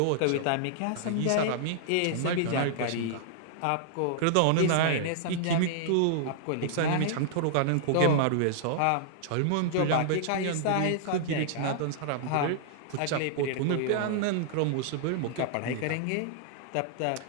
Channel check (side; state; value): both; different; correlation -0.01